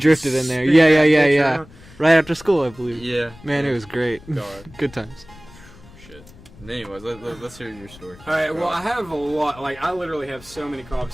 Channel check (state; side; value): noise; left; rumble, 22 dB below the sound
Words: in there. Yeah. Right after school, I believe. Yeah, man, it was great. God. Good times. Shit. Anyways, let's hear your story. All right. Well, I have a lot. Like, I literally have so many cop